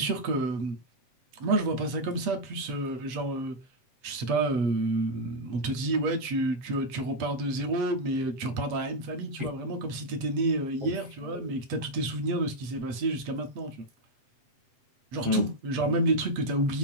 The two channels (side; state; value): left; late; 8.3 ms